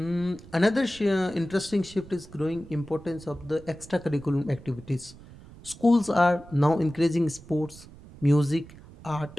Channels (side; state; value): right; noise; rumble, 19 dB below the sound